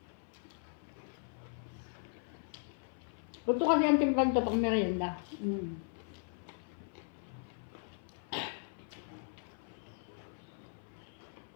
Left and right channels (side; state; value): right; silent; 52 dB below the other